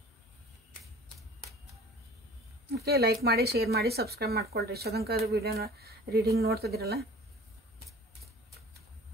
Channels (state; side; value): normal; both; correlation 0.45